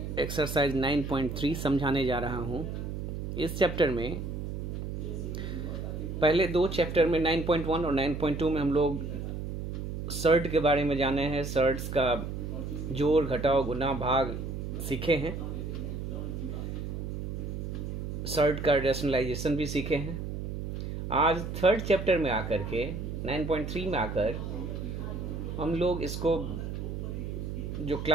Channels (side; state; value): right; noise; hum, 5 dB below the sound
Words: एक्सरसाइज 9.3 समझाने जा रहा हूं। इस चैप्टर में पहले दो चैप्टर में 9.1 और 9.2 में हम लोग सर्ट के बारे में जाने हैं। सर्ट्स का जोड़, घटाव, गुना, भाग सीखे हैं। सर्ट का रैशनलाइजेशन भी सीखे हैं। आज थर्ड चैप्टर में आकर के 9.3 में आकर हम लोग इसको जो